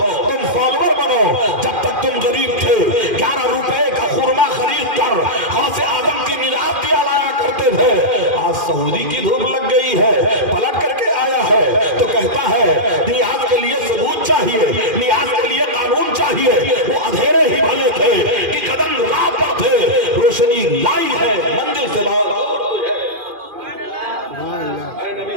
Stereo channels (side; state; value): left; late; 2.4 ms